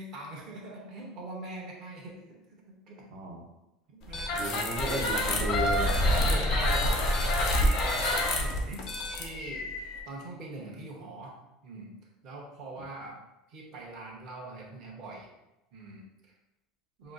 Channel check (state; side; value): normal; both; correlation 0.54